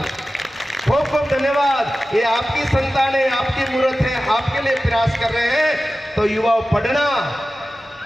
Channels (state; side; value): normal; both; correlation 0.95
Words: खूब खूब धन्यवाद। ये आपकी संतान है, आपकी मूर्त है, आपके लिए प्रयास कर रहे हैं। तो युवाओं पढ़ना,